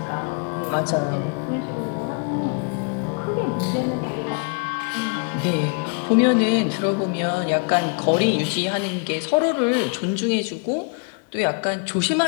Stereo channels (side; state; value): right; quieter; 37.0 dB